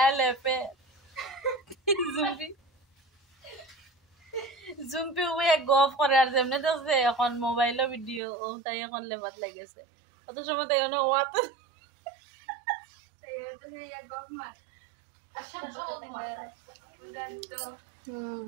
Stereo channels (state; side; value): drops out; left; at 8.2 s